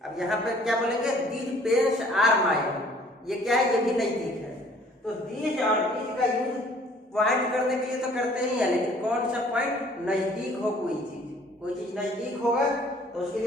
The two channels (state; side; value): normal; both; correlation 0.56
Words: अब यहाँ पे क्या बोलेंगे, दीज पेन्स आर माइन, ये क्या है, ये भी नजदीक है। तो दिस और दीज का यूज पॉइंट करने के लिए तो करते ही है, लेकिन कौन सा पॉइंट, नजदीक हो कोई चीज नजदीक होगा तो उसके